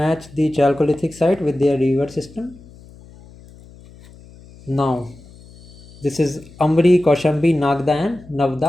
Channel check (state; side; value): noise; left; hum, 22 dB below the sound